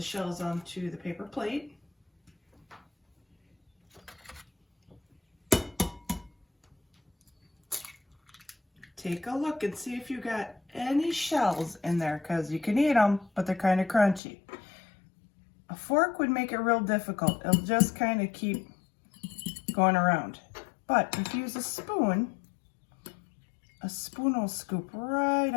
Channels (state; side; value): drops out; right; at 14.2 s